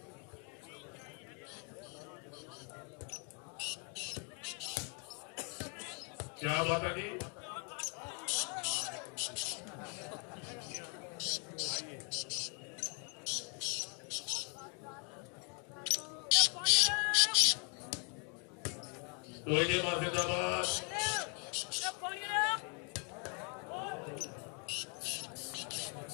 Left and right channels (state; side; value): quieter; right; 37.6 dB